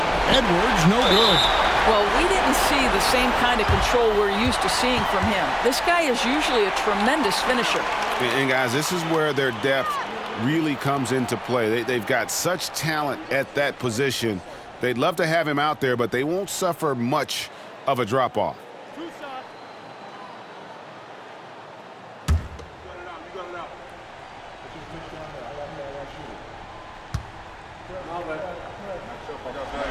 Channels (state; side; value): identical; both; correlation 1.00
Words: Edwards, no good. Well, we didn't see the same kind of control we're used to seeing from him. This guy is usually a tremendous finisher. And guys, this is where their depth really comes into play. They've got such talent at that position. They'd love to have him out there, but they won't suffer much of a drop-off.